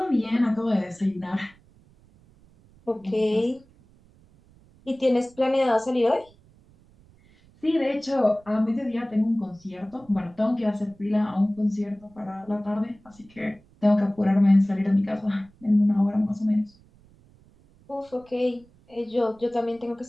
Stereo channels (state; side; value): noise; right; rumble, 29 dB below the sound